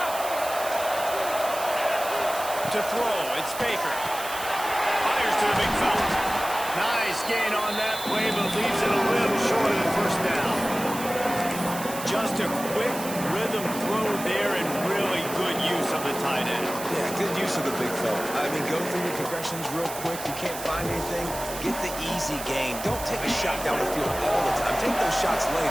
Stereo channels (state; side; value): noise; right; hiss, 10 dB below the sound